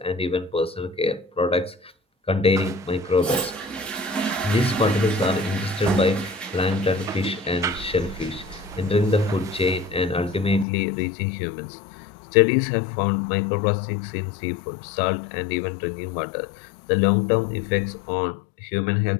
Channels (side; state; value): right; drops out; at 10.7 s